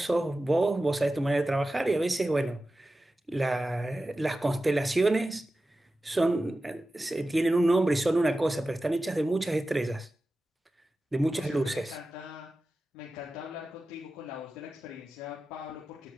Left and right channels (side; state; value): both; normal; correlation 0.94